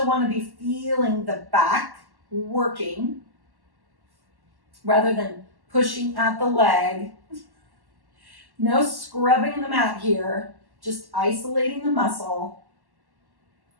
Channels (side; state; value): left; late; 1.1 ms